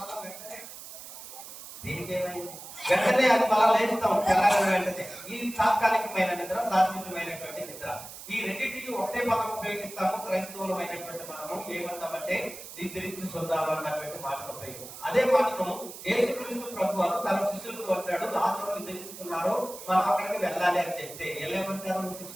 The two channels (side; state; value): right; noise; hiss, 13 dB below the sound